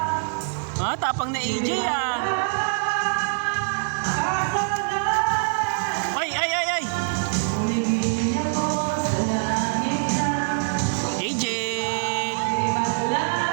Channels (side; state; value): left; silent; digital silence